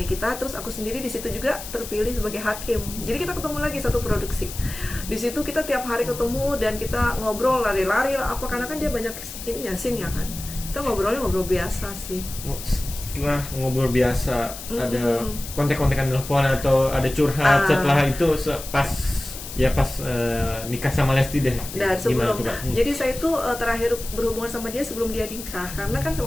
Terus aku sendiri di situ juga terpilih sebagai hakim. Jadi kita ketemu lagi satu produksi. Di situ kita tiap hari ketemu dan kita ngobrol lari-lari lah apa, karena kan dia banyak scene ya kan. Kita ngobrol biasa sih. Setelah ngobrol biasa, ada kontek-kontekan telepon atau ada curhat setelah itu pas nikah sama Lesti deh. Dan sebelum jadi saya itu terakhir berhubungan sama dia sebelum dia nikah, karena kan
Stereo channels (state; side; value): noise; left; hiss, 11 dB below the sound